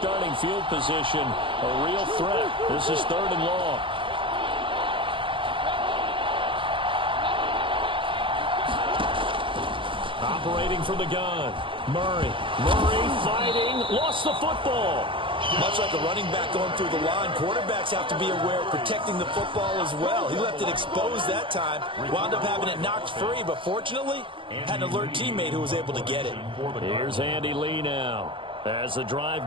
field position, a real threat. This is 3rd and long. Operating from the gun. Murray fighting, lost the football. Much like a running back going through the line, quarterbacks have to be aware of protecting the football as well. He left it exposed that time, wound up having it knocked free, but fortunately, had an alert teammate who was able to get it. Here's Andy Lee now as the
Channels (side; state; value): left; late; 0.25 ms